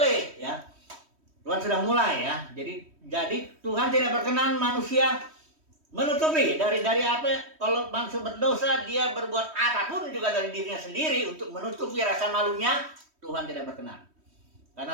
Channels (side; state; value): left; late; 3.1 ms